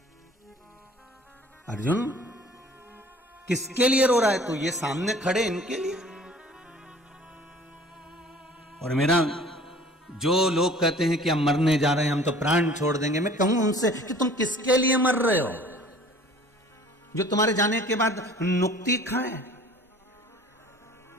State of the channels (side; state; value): both; normal; correlation 0.49